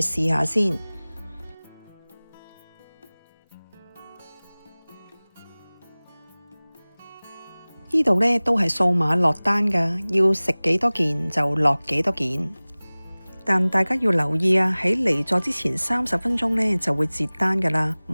去試下先。呢度呢都係掃碼落單㗎，要食幾多件就落幾多件。但大家要留意啊，喺離座之前30分鐘呢就會截單㗎啦，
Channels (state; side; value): inverted; both; correlation -1.00